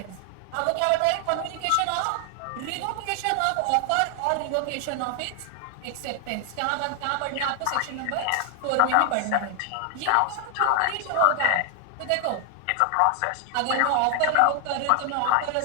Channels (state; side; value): different; both; correlation 0.00